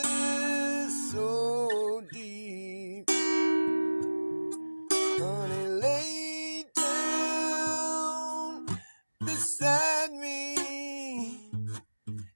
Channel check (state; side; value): inverted; both; correlation -1.00